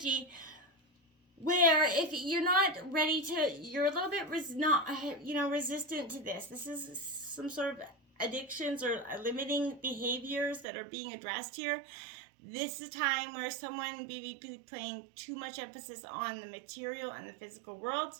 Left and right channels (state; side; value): drops out; left; at 10.7 s